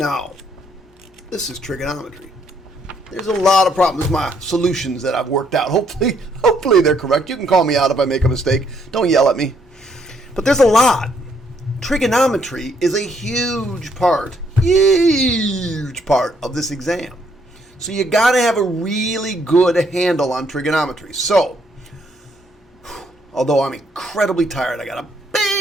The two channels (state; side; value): normal; both; correlation 0.70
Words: this is trigonometry. There's a lot of problems, my solutions that I've worked out. Hopefully they're correct. You can call me out if I make a mistake. Don't yell at me. But there's a lot. Trigonometry is a huge part of this exam. So you got to have a really good handle on trigonometry. So, although I'm incredibly tired, I got a